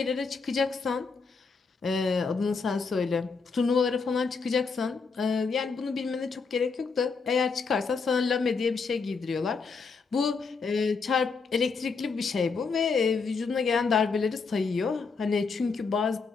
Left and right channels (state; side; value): quieter; right; 4.9 dB